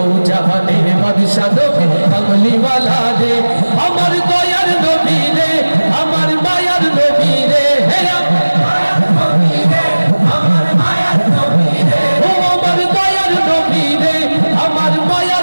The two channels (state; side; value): inverted; both; correlation -1.00